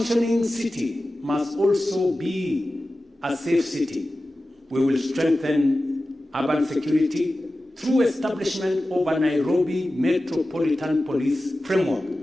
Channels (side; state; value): both; normal; correlation 0.95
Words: city must also be a safe city, we will strengthen urban security through establishment of a Nairobi Metropolitan Police framework